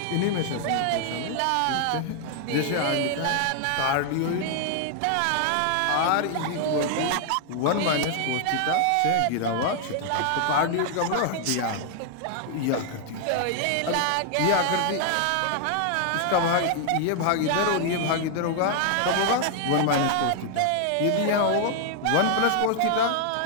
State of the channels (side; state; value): both; different; correlation 0.00